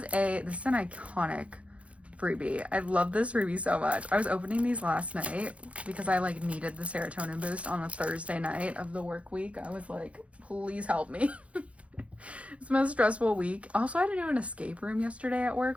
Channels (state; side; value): late; left; 0.063 ms